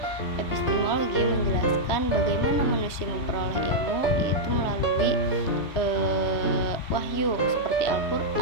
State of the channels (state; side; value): late; right; 3.2 ms